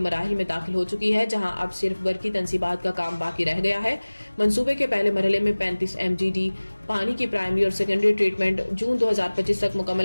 में दाखिल हो चुकी है, जहां अब सिर्फ बरकी तनसीबात का काम बाकी रह गया है। मंसूबे के पहले मरहले में 35 MGD पानी की प्राइमरी और सेकेंडरी ट्रीटमेंट जून 2025 तक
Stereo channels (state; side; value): inverted; both; correlation -1.00